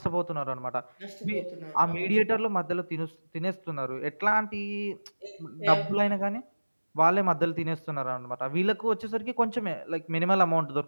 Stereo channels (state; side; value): inverted; both; correlation -1.00